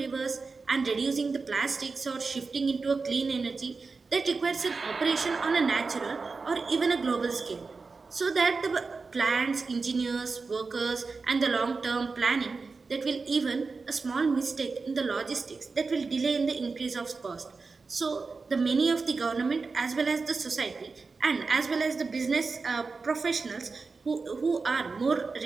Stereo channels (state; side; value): quieter; left; 4.3 dB